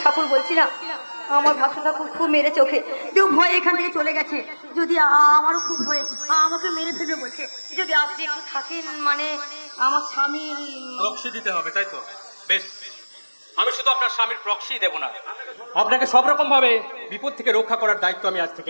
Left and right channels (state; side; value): inverted; both; correlation -1.00